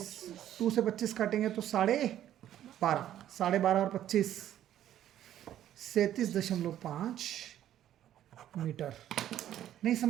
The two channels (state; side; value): quieter; left; 11.7 dB